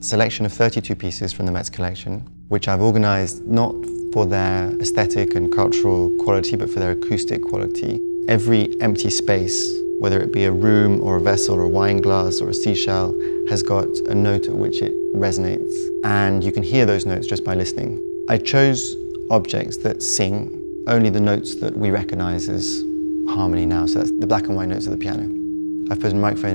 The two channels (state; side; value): inverted; both; correlation -1.00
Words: of 32 pieces from the Met's collection, which I've organised not for their aesthetic and cultural quality, but for their acoustic quality. Every empty space, whether it be a room or a vessel or a wine glass or a seashell, has got a note at which it resonates, and you can hear those notes just by listening. I chose objects that sing only the notes that we recognise as harmony now, so that's the black and white notes of the piano. I've put a